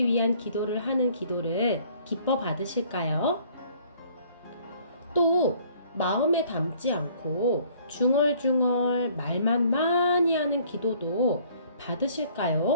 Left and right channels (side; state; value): both; inverted; correlation -0.58